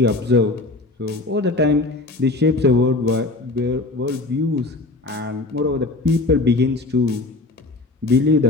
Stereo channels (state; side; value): quieter; right; 3.1 dB